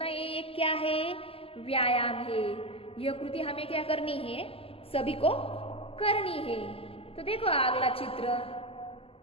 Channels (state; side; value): late; right; 0.27 ms